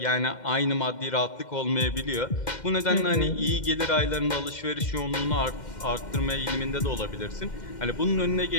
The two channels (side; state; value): right; late; 2.1 ms